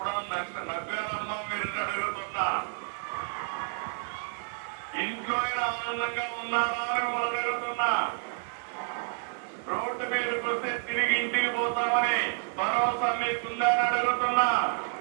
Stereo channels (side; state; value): left; silent; 58 dB below the other